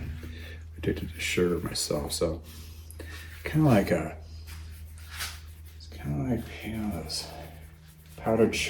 addicted to sugar myself, so kind of like a kind of like, this powdered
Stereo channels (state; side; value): identical; both; correlation 1.00